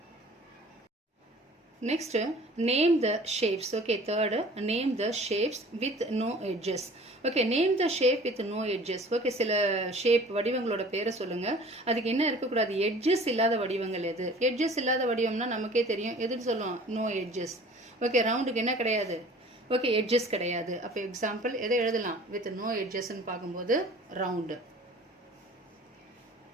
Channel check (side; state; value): both; normal; correlation 0.47